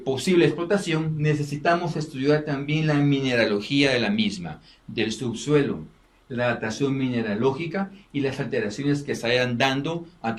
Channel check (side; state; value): both; identical; correlation 1.00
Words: explotación, necesitamos estudiar también la mineralogía de la misma, del subsuelo, la datación mineralógica y las alteraciones que se vayan dando a